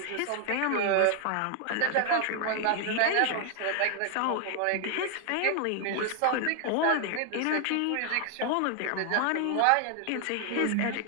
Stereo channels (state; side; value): different; both; correlation 0.00